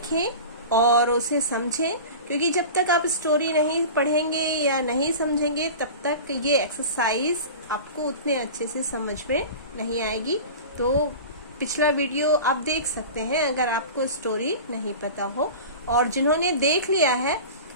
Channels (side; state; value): both; inverted; correlation -0.34